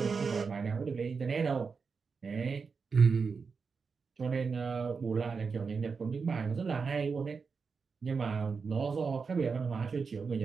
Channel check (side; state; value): left; quieter; 5.2 dB